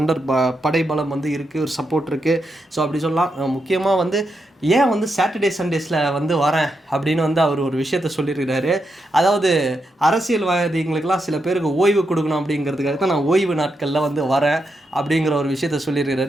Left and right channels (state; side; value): normal; both; correlation 0.84